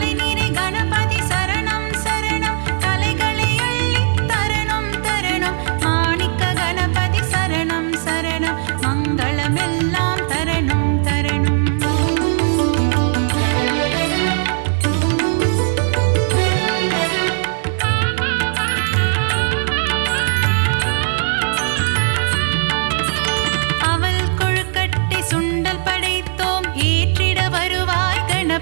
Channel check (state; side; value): silent; left; digital silence